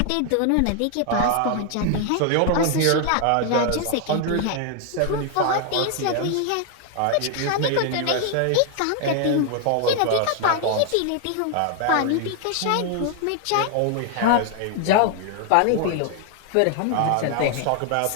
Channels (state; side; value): different; both; correlation 0.00